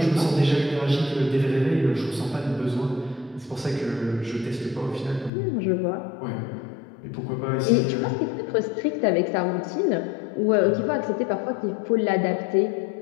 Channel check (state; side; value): drops out; right; at 5.3 s